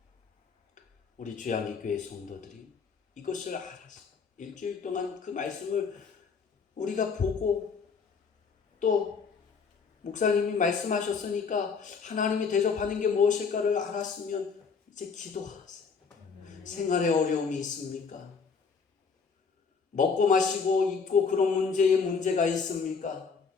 우리 주양기교회 성도들이 이것을 알아서 일주일 동안 그 말씀을 우리가 보고 또 목사님이 말씀하셨으니까 하나님이 대접하는 게 무엇일까를 알았으면 이제 기도하세요. 생활에 어려움이 있습니까? 먹고 마시고 입고 그런 문제가 있습니까?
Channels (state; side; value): quieter; right; 5.4 dB